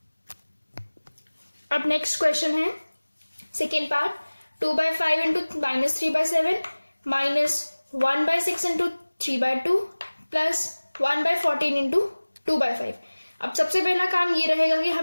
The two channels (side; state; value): both; inverted; correlation -1.00